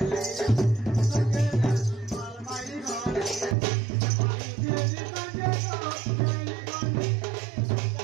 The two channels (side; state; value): left; drops out; at 3.6 s